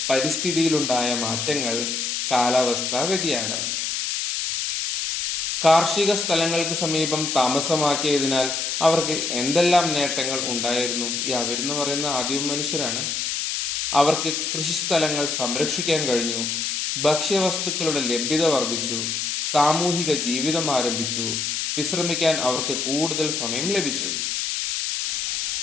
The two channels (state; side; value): noise; left; hiss, 1 dB below the sound